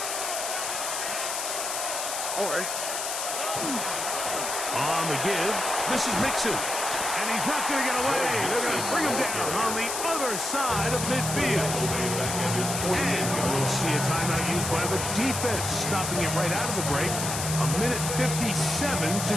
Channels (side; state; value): left; noise; hiss, 3 dB below the sound